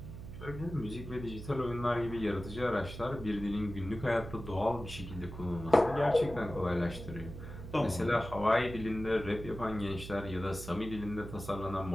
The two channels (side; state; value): right; noise; hum, 11 dB below the sound